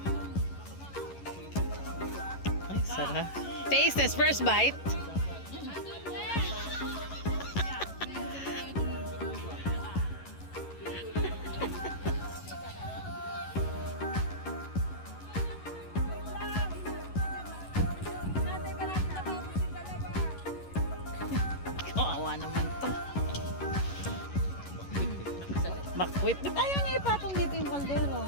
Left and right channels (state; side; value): late; right; 11 ms